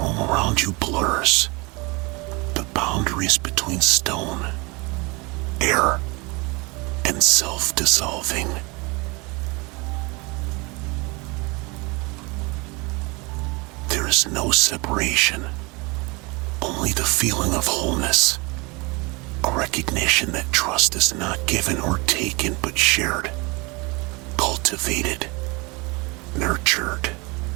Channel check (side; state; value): left; quieter; 27.0 dB